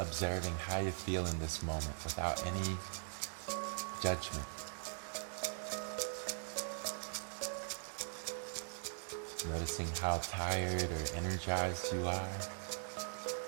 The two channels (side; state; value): left; silent; digital silence